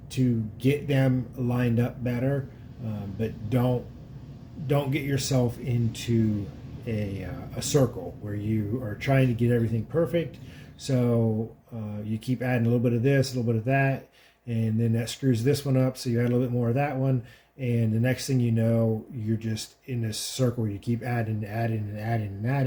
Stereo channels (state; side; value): identical; both; correlation 1.00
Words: to get them lined up better, but don't get yourself into a circle where you are trying to get everything perfect. So you keep adding a little bit of this, a little bit of that, and then that screws this one up, so you add a little bit more of that one, and the next thing you know, you're just in this circle where you keep adding and